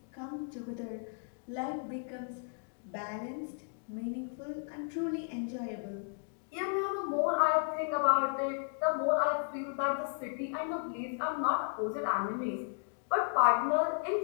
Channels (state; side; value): silent; right; 55 dB below the other